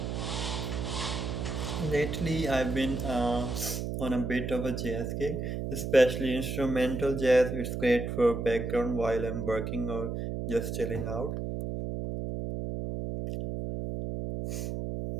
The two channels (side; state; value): right; noise; hum, 3 dB below the sound